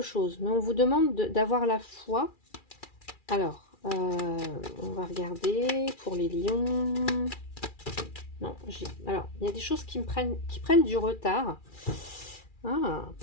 chose, mais on vous demande d'avoir la foi. Alors, on va regarder pour les lions. Non, alors, il y a des choses qui prennent du retard. Ah,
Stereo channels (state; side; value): late; right; 2.4 ms